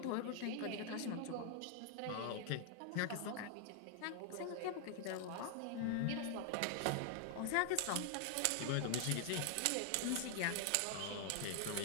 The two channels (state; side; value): different; both; correlation 0.00